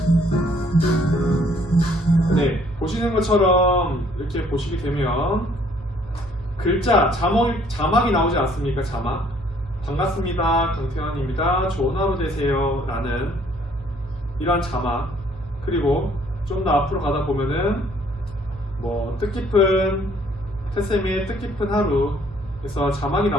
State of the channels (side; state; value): both; normal; correlation 0.62